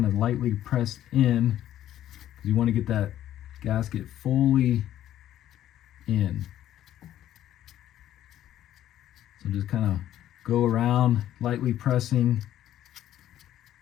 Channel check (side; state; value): right; quieter; 12.2 dB